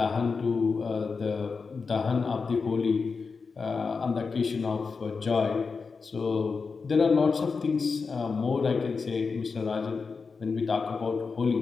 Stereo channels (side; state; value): right; quieter; 4.8 dB